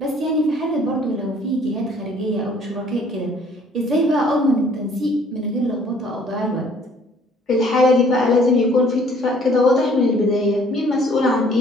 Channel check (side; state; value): both; normal; correlation 0.58